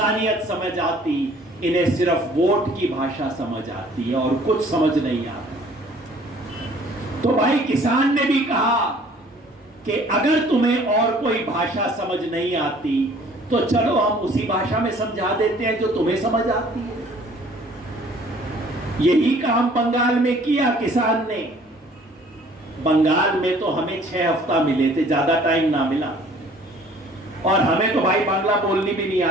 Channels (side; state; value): both; normal; correlation 0.55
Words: समझ आती। इन्हें सिर्फ वोट की भाषा समझ आती है और कुछ समझ नहीं आता। तो भाई किसान ने भी कहा कि अगर तुम्हें और कोई भाषा समझ नहीं आती तो चलो हम उसी भाषा में समझा देते हैं जो तुम्हें समझ आती है। यही काम बंगाल में किया किसान ने। बंगाल में तो हमें 6 हफ्ता मिले थे, ज्यादा टाइम ना मिला। और हमें तो भाई बांग्ला बोलनी भी नहीं